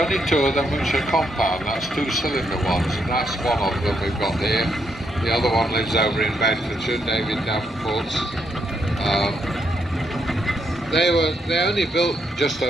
2 of them which are compound. That's 2-cylinder ones, and that's one of them we've got here. The other one lives over in Bedfordshire, David Davenport's. They only built just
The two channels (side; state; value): both; normal; correlation 0.78